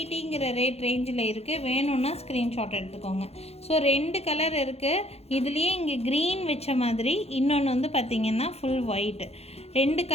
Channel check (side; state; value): right; late; 0.30 ms